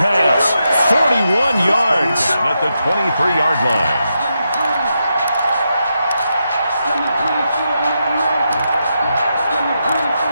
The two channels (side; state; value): both; inverted; correlation -0.85